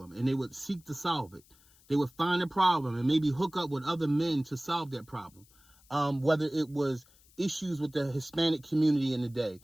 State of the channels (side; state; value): left; noise; hiss, 29 dB below the sound